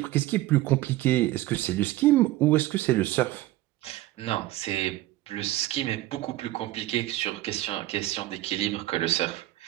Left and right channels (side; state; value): left; quieter; 16.6 dB